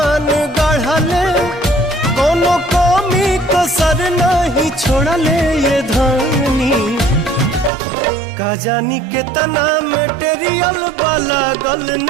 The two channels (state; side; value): drops out; left; at 7.7 s